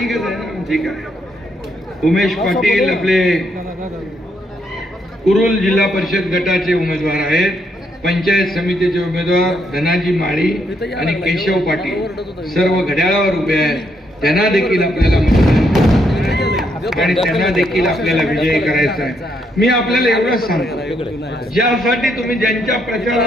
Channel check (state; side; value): normal; both; correlation 0.75